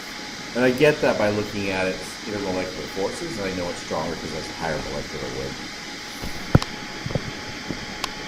And I get that by looking at its intermolecular forces, and I know it's stronger because it has a higher molecular weight.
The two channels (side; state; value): both; identical; correlation 1.00